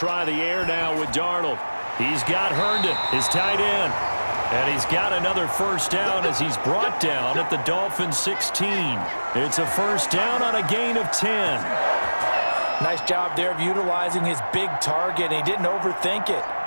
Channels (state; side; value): inverted; both; correlation -1.00